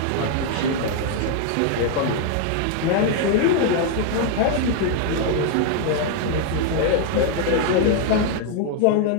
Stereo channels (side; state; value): both; different; correlation 0.00